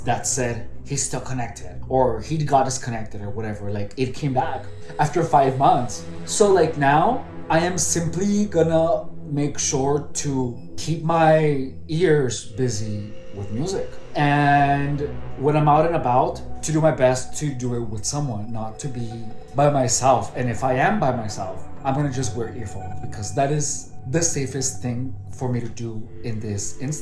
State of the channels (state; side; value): identical; both; correlation 1.00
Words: that said he's still connected or he got disconnected or whatever. It came back after 5 months. So now I am simply gonna make sure to keep my ears busy with music. And when I'm out and about, to do my best to do it with someone, not to be by myself. And if I am by myself, I'm gonna just wear earphones because that is the safest thing for me to do in this